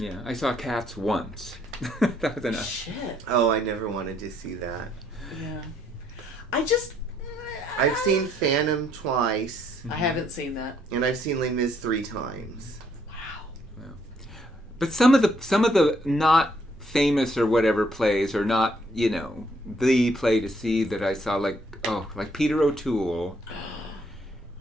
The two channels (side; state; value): both; normal; correlation 0.69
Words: I saw Cats once. That was enough. Shit. Oh, I never wanted to see that. Yeah. I've seen Phantom twice. I haven't seen that. And I've seen Les Mis 3 times. Wow. But some of the not famous or whatever plays are not, the play to see that I saw, like Peter O'Toole